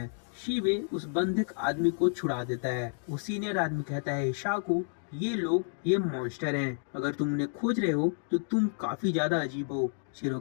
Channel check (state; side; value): silent; right; digital silence